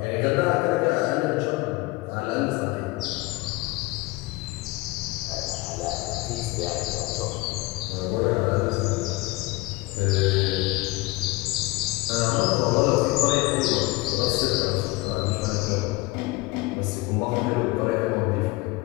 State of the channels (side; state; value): right; quieter; 21.7 dB